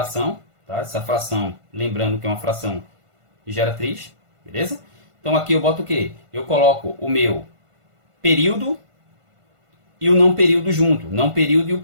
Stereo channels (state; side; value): late; left; 1.5 ms